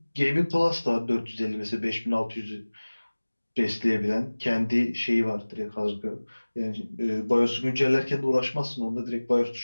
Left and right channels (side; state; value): both; inverted; correlation -1.00